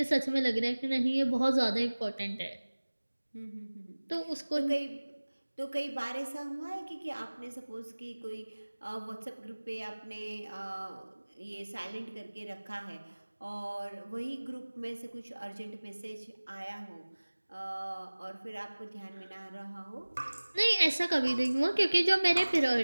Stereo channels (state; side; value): inverted; both; correlation -1.00